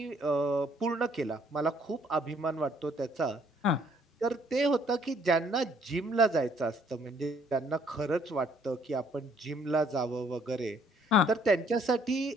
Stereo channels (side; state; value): both; normal; correlation 0.64